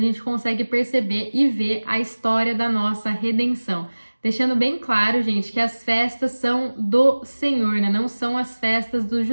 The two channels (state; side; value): inverted; both; correlation -1.00